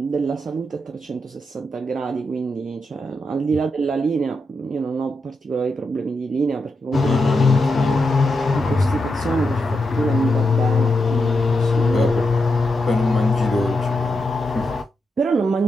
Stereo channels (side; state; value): both; normal; correlation 0.85